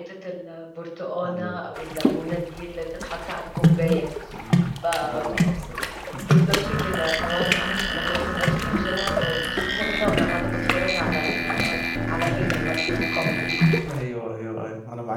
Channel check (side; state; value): both; identical; correlation 1.00